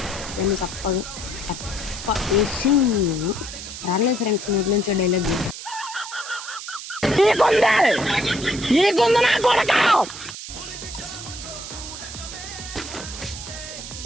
దాన్ని తప్ప వేసి రాలేదు ఫ్రెండ్స్ నోట్లో నుంచి డైలాగ్.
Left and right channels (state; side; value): noise; right; hiss, 10 dB below the sound